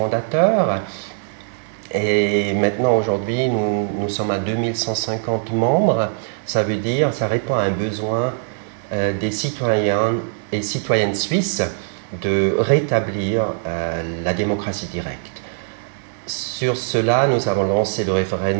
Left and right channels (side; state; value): left; silent; 64 dB below the other